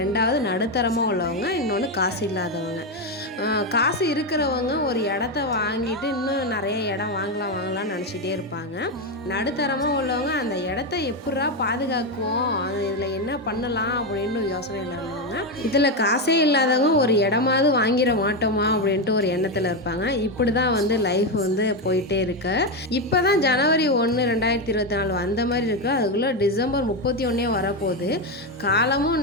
நடுத்தரமாக உள்ளவங்க, இன்னொன்று காசு இல்லாதவங்க. காசு இருக்கிறவங்க ஒரு இடத்த வாங்கிட்டு இன்னும் நிறைய இடம் வாங்கலாம்னு நினச்சிட்டே இருப்பாங்க. நடுத்தரமாக உள்ளவங்க அந்த இடத்த எப்படா பாதுகாக்குவோம், அது இதில் என்ன பண்ணலாம் அப்படின்னு யோசனையில் உள்ளவங்க. இதில் காசே இல்லாதவங்க ஒரு இடமாவது வாங்கிட மாட்டோமா அப்படின்ட்டு ஒரு எண்ணத்தில் இருப்பாங்க. இப்படி தான் வந்து லைஃப் வந்து போயிட்டே இருக்கு. இப்போ தான் ஜனவரி 1, 2024 அந்த மாதிரி இருக்குது. அதுக்குள்ளே டிசம்பர் 31 வரப்போகுது.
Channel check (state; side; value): normal; both; correlation 0.09